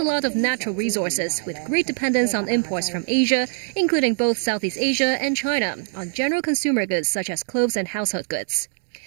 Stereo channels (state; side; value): silent; left; 64 dB below the other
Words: lot of natural resources with great dependence on imports from Asia, including both Southeast Asia and China, on general consumer goods such as clothes and household goods.